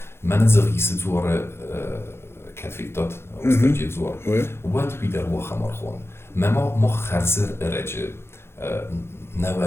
Men zergis زور كتفيتات استرجي زور وات بيدر وخمر خون ما خرزر رجع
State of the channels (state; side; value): late; right; 0.12 ms